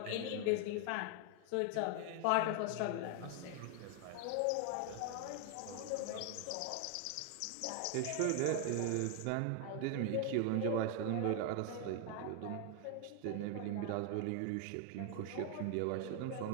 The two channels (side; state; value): both; different; correlation 0.00